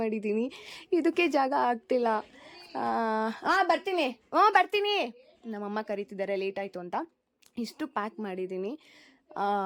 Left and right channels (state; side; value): identical; both; correlation 1.00